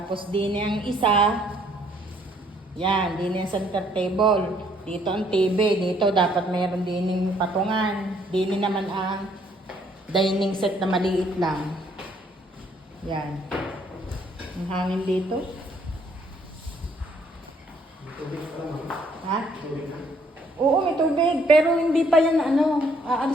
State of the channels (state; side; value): normal; both; correlation 0.65